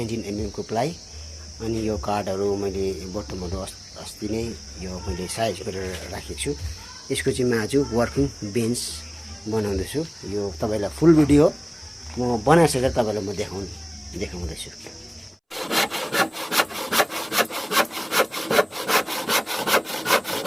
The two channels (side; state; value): both; identical; correlation 1.00